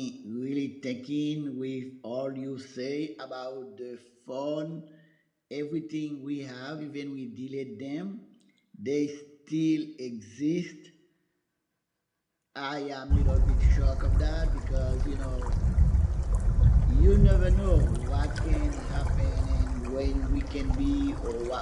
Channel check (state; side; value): identical; both; correlation 1.00